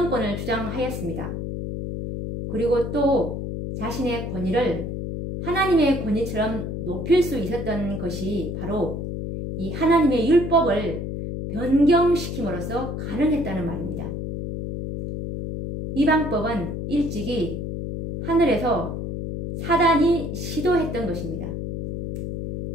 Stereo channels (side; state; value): left; noise; hum, 4 dB below the sound